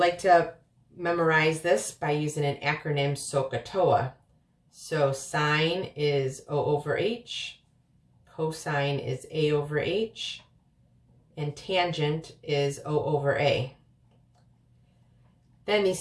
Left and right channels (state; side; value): identical; both; correlation 1.00